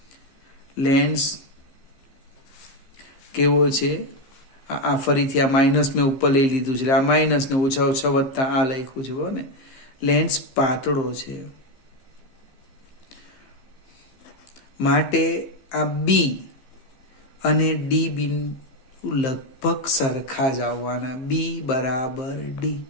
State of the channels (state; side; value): late; right; 15 ms